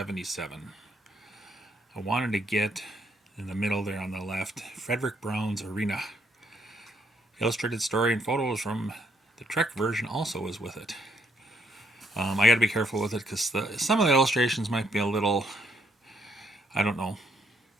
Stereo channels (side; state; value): both; normal; correlation 0.71